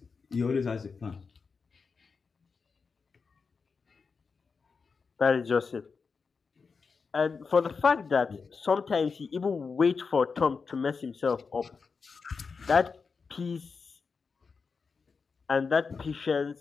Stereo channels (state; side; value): quieter; right; 5.1 dB